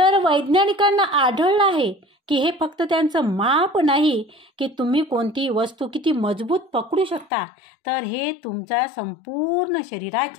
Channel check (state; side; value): drops out; right; at 7.3 s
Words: वैज्ञानिकांना आढळलं आहे की हे फक्त त्यांचं माप नाही की तुम्ही कोणती वस्तू किती मजबूत पकडू शकता, तर हे तुमच्या संपूर्ण